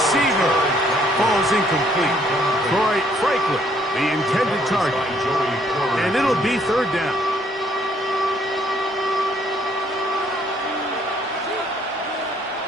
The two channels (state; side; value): normal; both; correlation 0.65